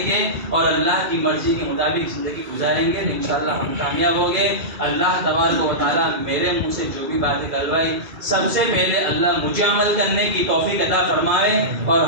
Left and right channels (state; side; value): late; left; 2.3 ms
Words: گے اور اللہ کی مرضی کے مطابق زندگی گزاریں گے انشاءاللہ ہم کامیاب ہوں گے اللہ تبارک و تعالیٰ میرے منہ سے جو بھی باتیں کروائی سب سے پہلے اللہ مجھے عمل کرنے کی توفیق عطا فرمائے اور